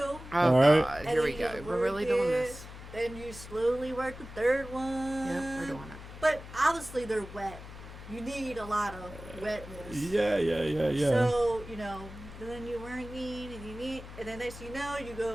All right. God, and here then we you go. just We're work really doing it, this. Then you slowly work the 3rd one. Yep, we're doing it. But obviously they're wet. You need a lot of wetness. Yeah. So, then you're working and then next thing you know, you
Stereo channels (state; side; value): noise; left; hum, 14 dB below the sound